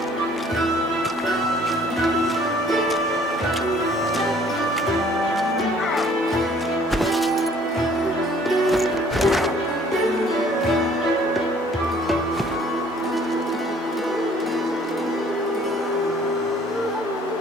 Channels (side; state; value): both; normal; correlation 0.57